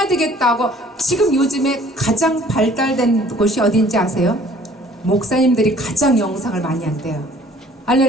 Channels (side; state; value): both; normal; correlation 0.55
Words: 되겠다고 지금 요즘에 가장 발달된 곳이 어딘지 아세요? 목사님들이 가장 영상을 많이 한대요.